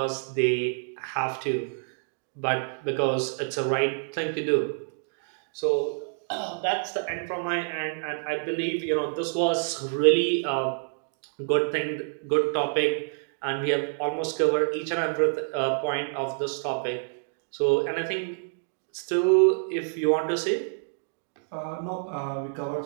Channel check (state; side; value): silent; left; digital silence